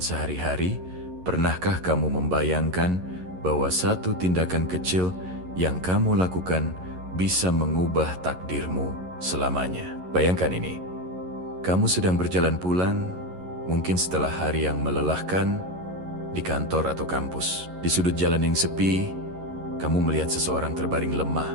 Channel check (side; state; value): left; late; 11 ms